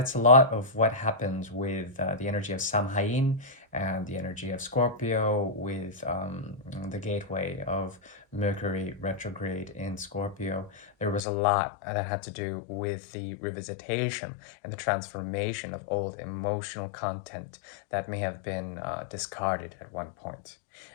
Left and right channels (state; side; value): drops out; right; at 11.2 s